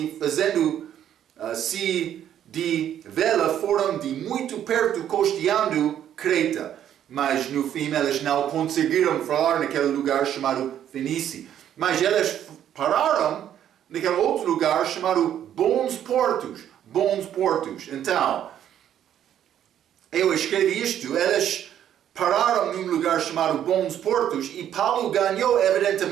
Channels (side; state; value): left; quieter; 10.4 dB